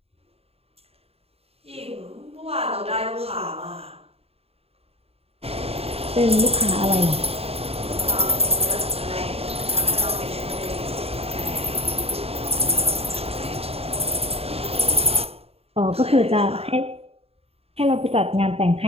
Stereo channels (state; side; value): late; left; 0.29 ms